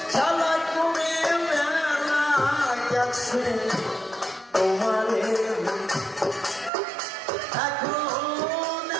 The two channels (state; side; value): drops out; left; at 6.7 s